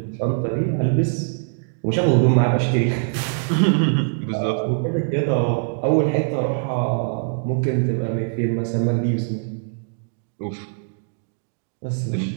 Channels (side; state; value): left; silent; digital silence